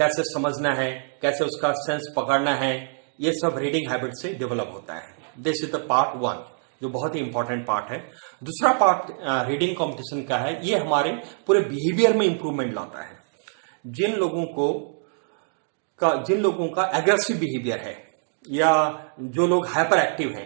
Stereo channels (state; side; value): silent; left; 62 dB below the other